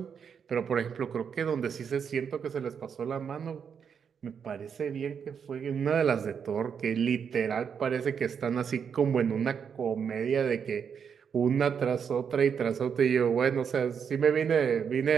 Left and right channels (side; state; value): left; quieter; 7.0 dB